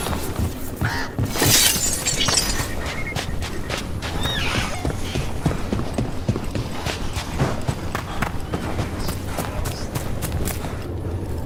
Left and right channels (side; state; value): both; identical; correlation 1.00